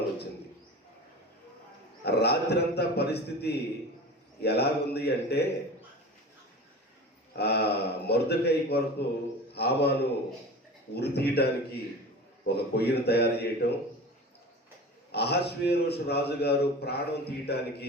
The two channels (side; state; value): both; normal; correlation 0.35